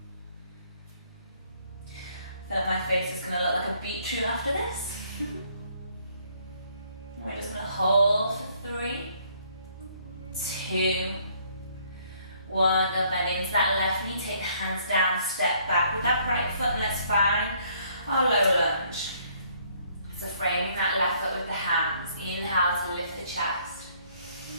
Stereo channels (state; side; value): inverted; both; correlation -0.65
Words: I feel like my face is going to look like a beetroot after this. We're just going to hold for 3, 2, 1. Go bend into that left knee. Take the hands down. Step back with that right foot, and let's find our low lunge. So framing that left foot with the hands. Inhale to lift the chest.